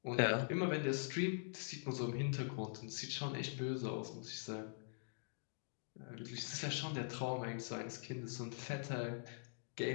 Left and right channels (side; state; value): right; silent; digital silence